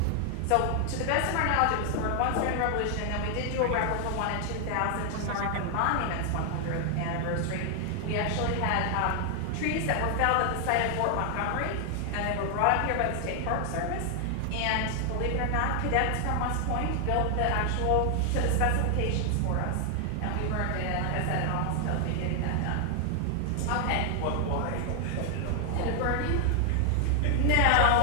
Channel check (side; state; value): both; different; correlation 0.00